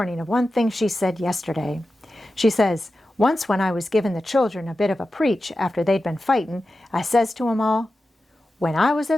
of one thing she said yesterday. She says, 'Once when I was giving the children a bit of a preach after they'd been fighting, I says to 'em all, "When I was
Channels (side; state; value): both; normal; correlation 0.92